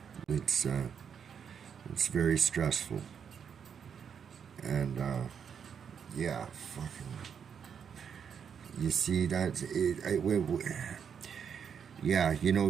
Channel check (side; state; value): left; quieter; 7.3 dB